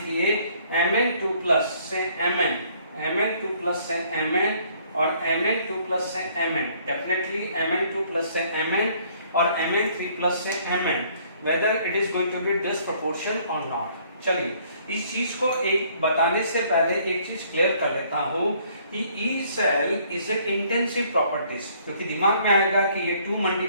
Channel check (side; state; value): both; inverted; correlation -0.62